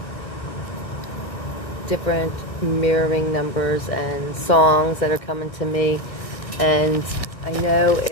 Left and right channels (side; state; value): right; late; 1.5 ms